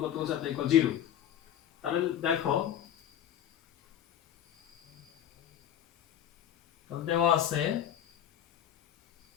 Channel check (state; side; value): quieter; right; 10.4 dB